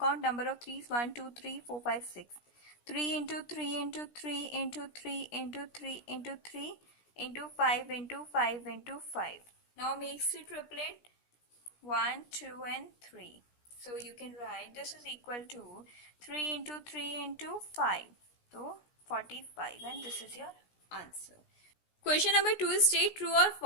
number of 3's 1 2 3 4 5 6. 3 into 3 into 3 into 3 into 3 into 3 into 5 into 5 into 5. Now makes the triplet 1, 2, and 3. So you can write this is equal to 3 into 3 into 5. So 45, and this is your answer. Question number 2 is state true or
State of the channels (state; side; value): late; right; 17 ms